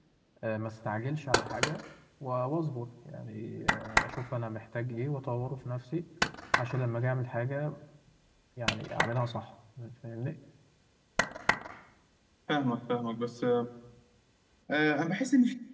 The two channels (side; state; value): both; identical; correlation 1.00